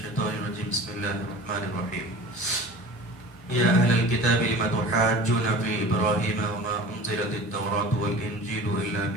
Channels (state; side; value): normal; both; correlation 0.39